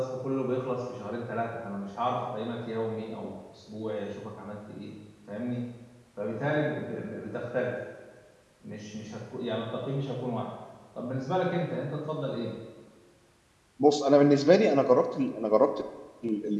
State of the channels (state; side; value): identical; both; correlation 1.00